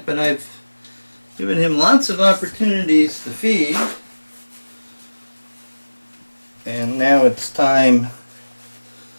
but I've given him lots of opportunities to feed, and now it's time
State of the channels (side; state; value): both; inverted; correlation -1.00